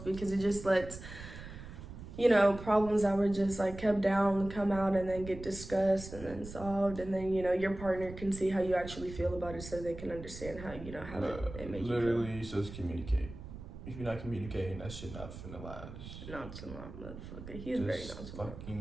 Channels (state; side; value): noise; right; rumble, 12 dB below the sound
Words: it just lets problems that were just like kept down come out and then get discussed and then solved, and then your partner can see how you actually feel about it, so they can understand how it makes you feel. Literally, just communicate. If you're not communicating, that shit not finna last. Nonchalant motherfucker. He's very nonchalant.